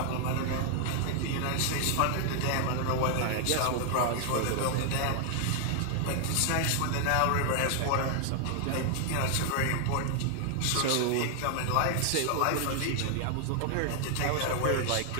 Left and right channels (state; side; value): different; both; correlation 0.00